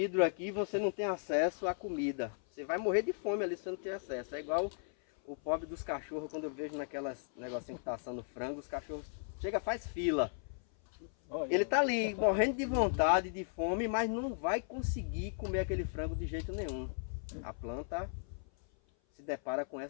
aqui e você não tem acesso à comida. Você vai morrer de fome ali se você não tem acesso. É igual o pobre dos cachorros, quando eu vejo naquelas negocinho que tá assando frango, os cachorros chega, faz fila. Ele tá ali morrendo de vontade, de fome, mas não vai conseguir comer aquele frango de jeito nenhum. A planta se depara com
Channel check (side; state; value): right; silent; 54 dB below the other